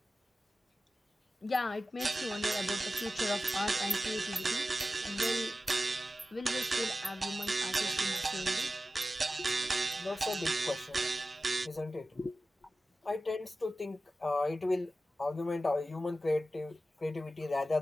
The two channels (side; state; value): both; normal; correlation 0.94